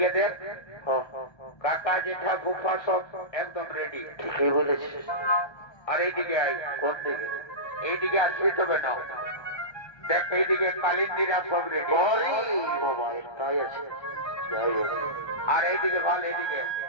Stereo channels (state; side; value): late; right; 1.2 ms